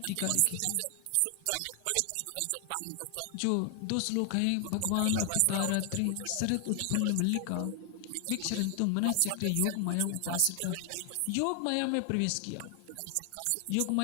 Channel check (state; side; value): different; both; correlation 0.00